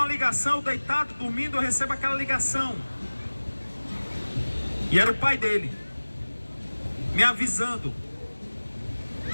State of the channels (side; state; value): both; inverted; correlation -1.00